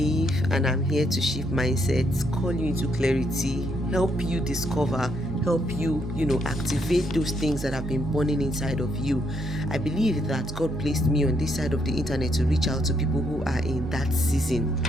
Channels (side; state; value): both; normal; correlation 0.74